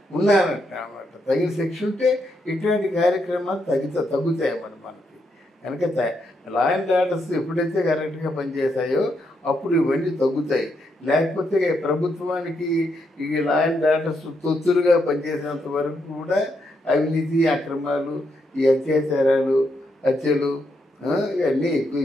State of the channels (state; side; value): normal; both; correlation 0.79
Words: ఉన్నారంట అన్నమాట. తగిన శిక్ష ఉంటే ఇట్లాంటి కార్యక్రమాలు తగ్గుతాయి మనకి. కనుక లా అండ్ ఆర్డర్స్ ఎప్పుడైతే కరెక్ట్గా పనిచేస్తాయో అప్పుడు ఇవన్నీ తగ్గుతాయి. లేకపోతే ప్రభుత్వానికి ఈ లా అండ్ ఆర్డర్స్ తొత్తులుగా పనిచేసినంత వరకు కూడా అవినీతి, అక్రమాలు, ఈ అత్యాచారాలు, హత్యలు ఇవన్నీ